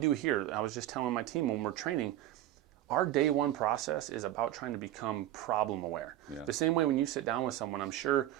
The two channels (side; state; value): left; quieter; 13.6 dB